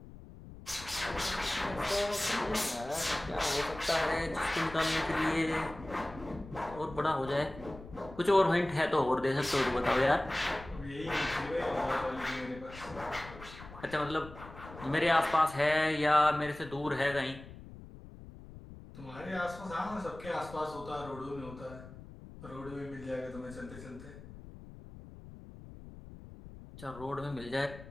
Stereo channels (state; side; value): noise; left; rumble, 16 dB below the sound